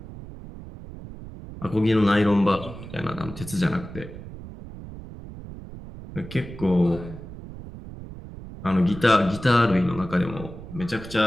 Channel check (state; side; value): noise; right; rumble, 13 dB below the sound